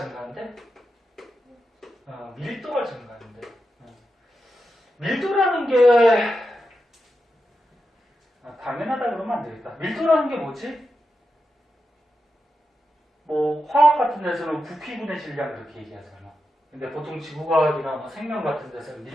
밀도가 증가하는데 밀도라는 게 당연하다 그러면 안 되겠다. 밀도라는 게 뭐지? 뭐 화학 같은 데서는 부피분의 질량 이렇게 얘기하잖아. 근데 보통 지구과학이나 뭐 생명 같은 데서는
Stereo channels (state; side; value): normal; both; correlation 0.88